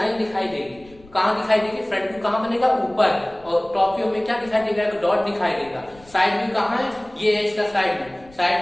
दिखाई देगी। कहाँ दिखाई देगी, फ्रंट व्यू कहाँ बनेगा, ऊपर, और टॉप व्यू में क्या दिखाई देगा, एक डॉट दिखाई देगा। साइड व्यू कहाँ है, ये है इसका साइड व्यू।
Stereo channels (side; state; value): left; noise; rumble, 26 dB below the sound